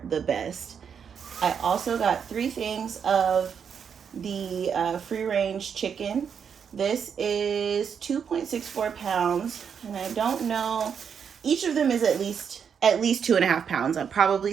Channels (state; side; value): quieter; left; 7.2 dB